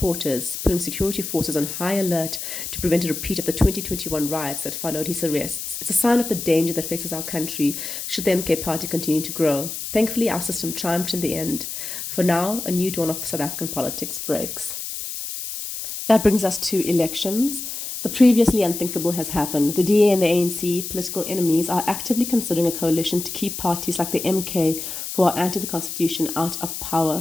putting security forces on high alert to prevent a repeat of the 2021 riots that followed his arrests. It's a sign of the danger that faces our country should the MK party continue to grow. Thankfully, our system triumphed in the end. For now, a new dawn of South African politics breaks. That brings us to elections. The previously unthinkable has happened. The DA and the ANC, political enemies, are actively considering a coalition to keep parties like the MK, who are anti the constitution, out of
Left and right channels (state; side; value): noise; left; hiss, 6 dB below the sound